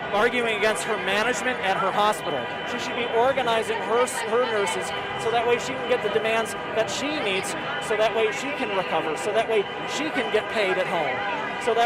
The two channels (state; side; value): identical; both; correlation 1.00